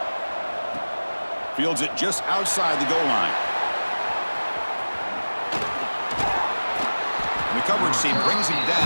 Fields it just outside the goal line. And the coverage team brings him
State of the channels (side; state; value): both; inverted; correlation -1.00